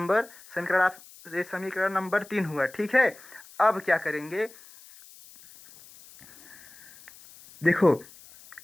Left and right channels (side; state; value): left; noise; hiss, 22 dB below the sound